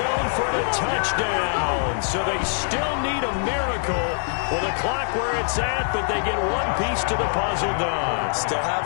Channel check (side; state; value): right; silent; 63 dB below the other